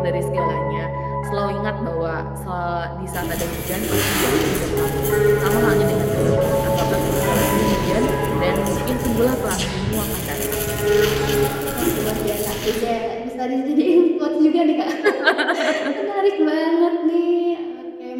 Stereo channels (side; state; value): both; identical; correlation 1.00